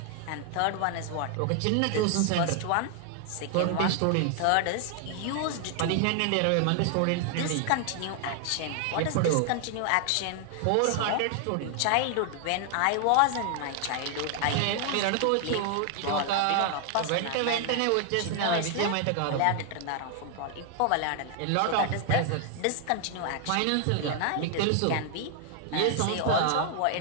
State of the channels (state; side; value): different; both; correlation 0.00